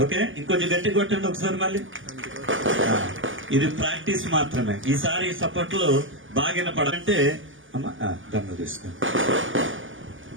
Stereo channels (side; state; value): left; late; 0.58 ms